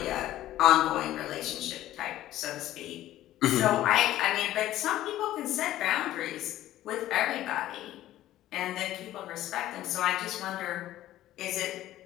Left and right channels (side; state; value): right; quieter; 14.0 dB